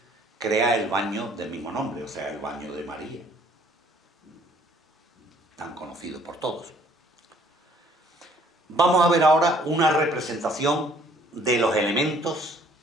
crea el baño del mismo nombre, o sea, el baño de María, tan conocido por todos. Vamos a ver ahora una representación de los elementos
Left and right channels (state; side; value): normal; both; correlation 0.59